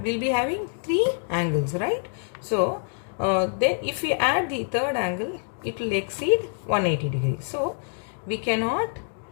having three angles, right? So then if we add the third angle, it will exceed 180 degrees. So we cannot,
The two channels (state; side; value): silent; right; 59 dB below the other